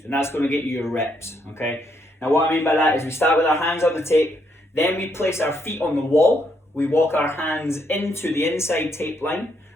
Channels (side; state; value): both; normal; correlation 0.75